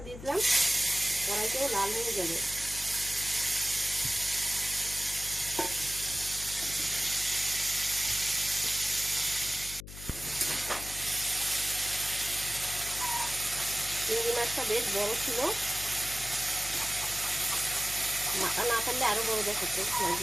দিয়ে দিলাম। কড়াইটাও লাল হয়ে যাবে। চিংড়ি মাছটা বেশ বড় ছিল, মাথা না ফেললে আরো বড় দেখাচ্ছে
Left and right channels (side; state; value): left; noise; hum, 13 dB below the sound